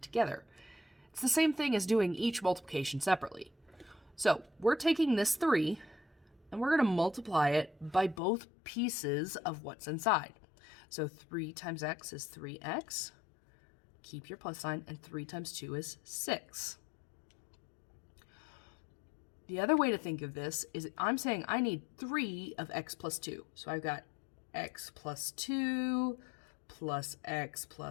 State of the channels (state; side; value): drops out; right; at 8.2 s